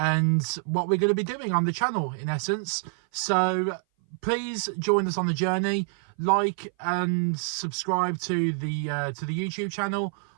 what we're going to be doing on the channel, in essence. So please join us on the journey. Like and subscribe to the YouTube channel.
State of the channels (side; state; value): left; silent; 58 dB below the other